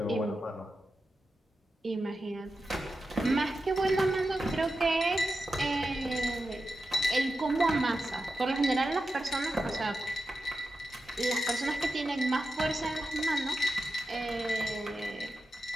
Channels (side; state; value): both; normal; correlation 0.90